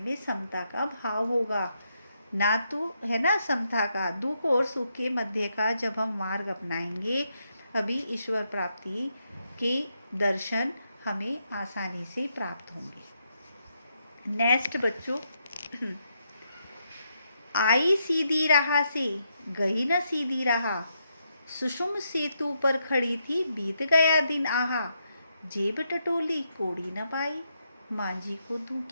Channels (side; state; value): both; inverted; correlation -0.80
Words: समता का भाव होगा, ना तो है ना समता का, दुख और सुख के मध्य का जब हम मार्ग अपनाएंगे, अभी ईश्वर प्राप्ति के दर्शन हमें आसानी से प्राप्त होंगे। नेक्स्ट बच्चों, आई सीधी राह से गई न सीधी राह, सुषुम सेतु पर खड़ी थी बीत गया दिन आहा, जेब टटोली कोड़ी न पाई, मांझी को दूं